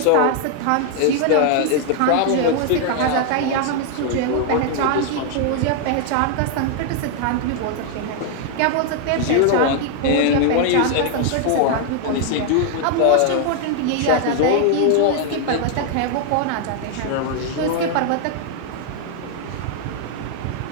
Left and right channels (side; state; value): both; different; correlation 0.00